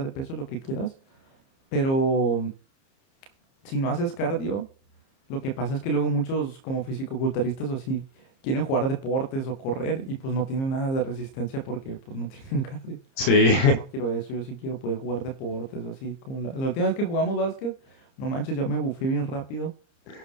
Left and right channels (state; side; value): late; right; 30 ms